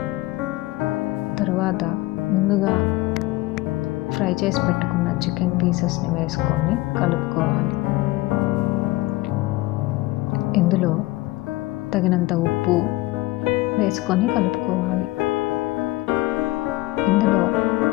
తరువాత ముందుగా ఫ్రై చేసి పెట్టుకున్న చికెన్ పీసెస్ని వేసుకొని కలుపుకోవాలి. ఇందులో తగినంత ఉప్పు వేసుకొని కలుపుకోవాలి. ఇందులో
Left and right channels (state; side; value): quieter; right; 19.3 dB